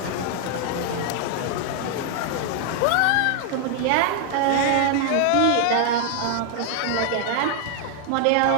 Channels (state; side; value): different; both; correlation 0.00